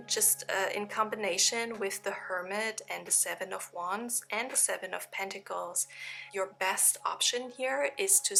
Just in combination with the Hermit and the 7 of Wands and the 7 of Pentacles, your best option here is to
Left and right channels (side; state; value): both; identical; correlation 1.00